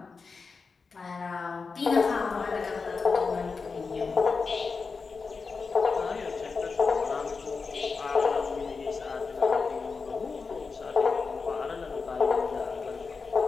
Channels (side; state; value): right; quieter; 4.7 dB